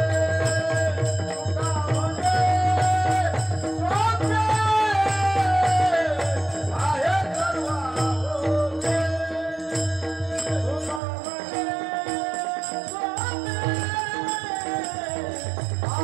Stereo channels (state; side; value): drops out; left; at 11.0 s